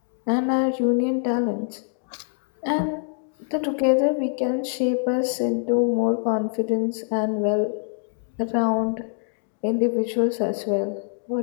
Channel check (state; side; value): silent; right; 55 dB below the other